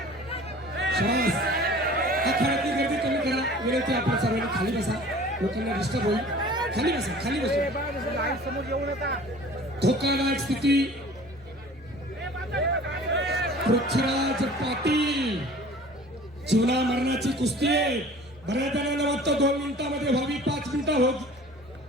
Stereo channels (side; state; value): both; normal; correlation 0.46